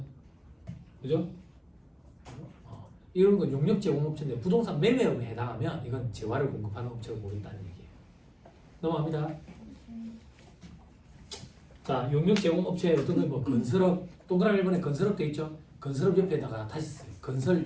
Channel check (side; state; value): both; identical; correlation 1.00